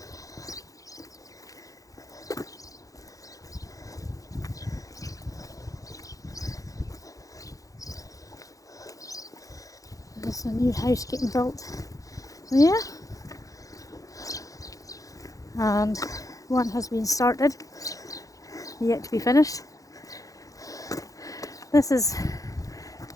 There's a new house getting built there, and one has been started, yet to be finished. This is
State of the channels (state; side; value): late; right; 0.17 ms